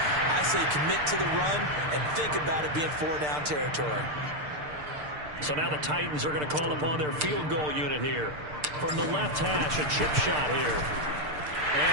I say commit to the run and think about it being 4-down territory. So now the Titans are going to call upon their field goal unit here. From the left hash, a chip shot here.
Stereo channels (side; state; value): left; late; 6.7 ms